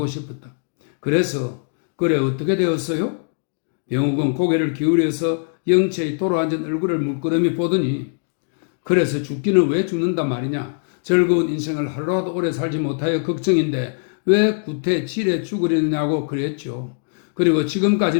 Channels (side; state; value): right; silent; 65 dB below the other